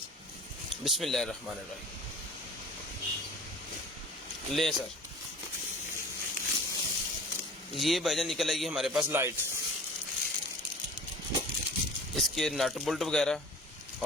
बिस्मिल्लाहिर्रहमानिर्रहीम। लें सर, ये भाईजान निकल आएगी हमारे पास लाइट, इसके नट बोल्ट वगैरह,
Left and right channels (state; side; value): normal; both; correlation 0.42